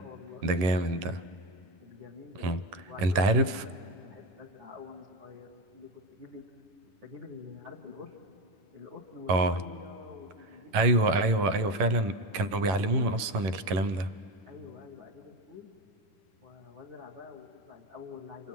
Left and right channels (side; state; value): left; late; 11 ms